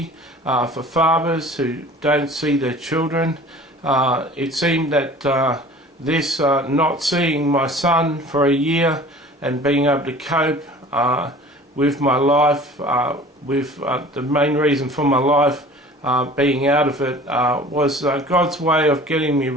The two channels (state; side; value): normal; both; correlation 0.45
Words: for fathers who don't see their children. It seemed that this not seeing my son for a year and being able to cope with my life, with the main reason for my life being out of it, was God's way of getting me